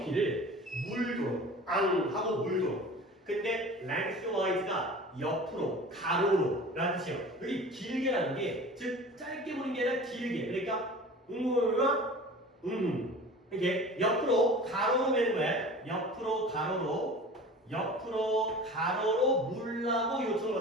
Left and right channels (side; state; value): both; normal; correlation 0.39